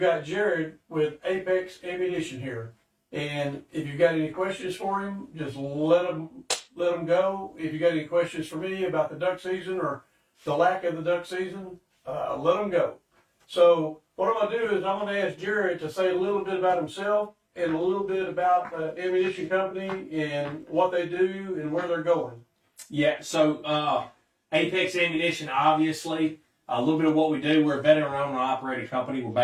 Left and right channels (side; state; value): both; identical; correlation 1.00